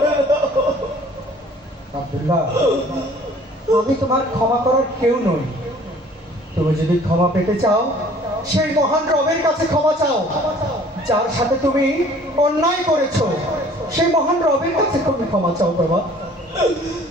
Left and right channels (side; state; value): both; normal; correlation 0.53